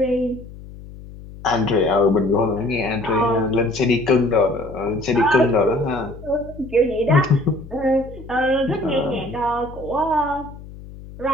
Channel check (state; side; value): noise; left; hum, 16 dB below the sound